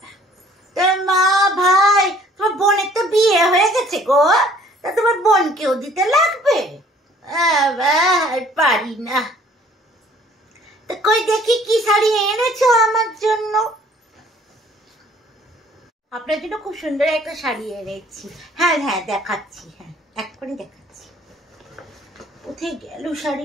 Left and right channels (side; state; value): both; normal; correlation 0.56